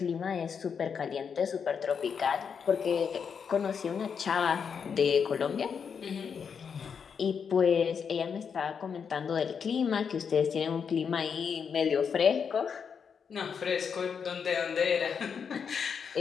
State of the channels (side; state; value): right; quieter; 6.6 dB